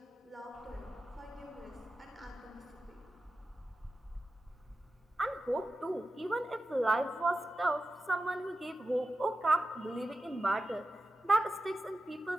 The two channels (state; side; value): normal; both; correlation 0.92